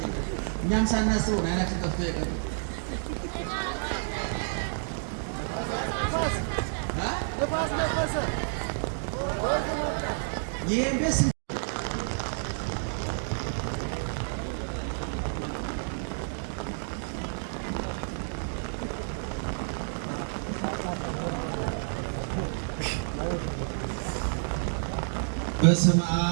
እኛም ሳናስበው አይናችን ጠፍቶ ይቀር ነፋስ ነፈሰ ይሄንስ በስመ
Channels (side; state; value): left; silent; digital silence